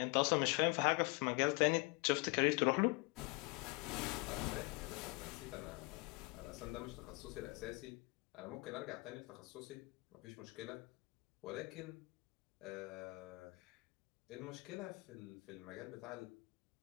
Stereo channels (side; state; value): right; quieter; 27.9 dB